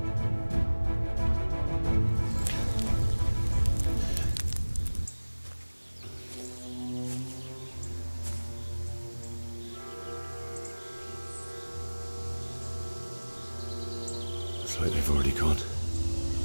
Looks like they've already gone.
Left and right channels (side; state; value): both; inverted; correlation -1.00